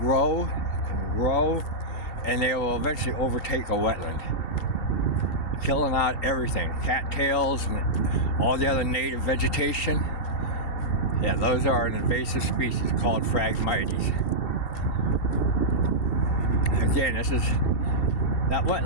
grow, and they will eventually overtake a wetland, killing out everything, cattails and all the other native vegetation. Yeah, those are an invasive species called Phragmites. Again, this is that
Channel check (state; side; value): late; right; 2.7 ms